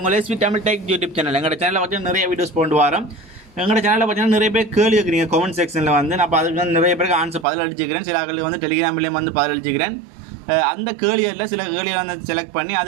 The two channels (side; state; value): left; drops out; at 7.5 s